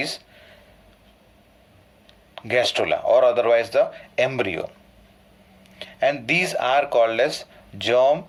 gastrula or otherwise the embryo, and these are called as germ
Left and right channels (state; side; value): identical; both; correlation 1.00